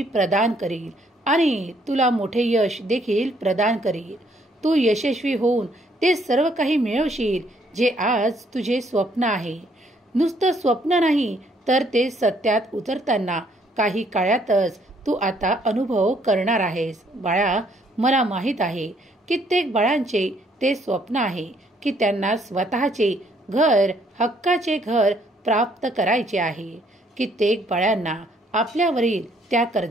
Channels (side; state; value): both; normal; correlation 0.67